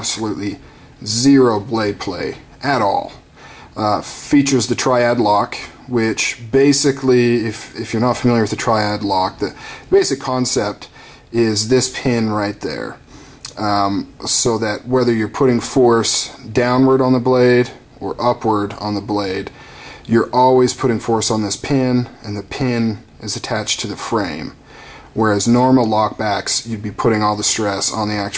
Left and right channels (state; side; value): identical; both; correlation 1.00